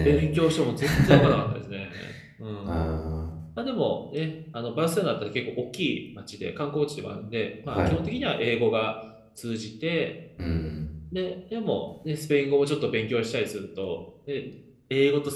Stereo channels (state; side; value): identical; both; correlation 1.00